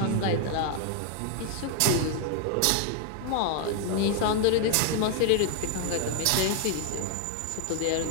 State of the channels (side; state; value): both; different; correlation 0.00